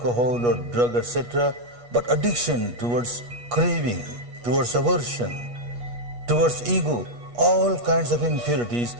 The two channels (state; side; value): late; left; 8.3 ms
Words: or drug, etc., but addiction towards craving, towards aversion, towards ego, all kinds of impurities.